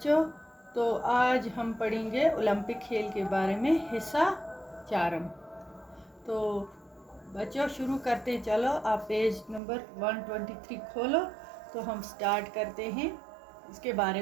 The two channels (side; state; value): left; drops out; at 9.6 s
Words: तो आज हम पढ़ेंगे ओलंपिक खेल के बारे में हिस्सा 4। तो बच्चों शुरू करते हैं। चलो आप पेज नंबर 123 खोलो तो हम स्टार्ट करते हैं इसके बारे